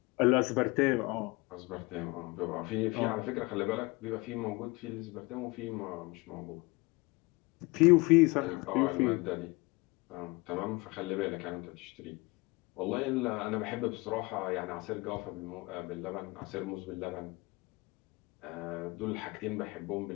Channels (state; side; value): quieter; right; 24.8 dB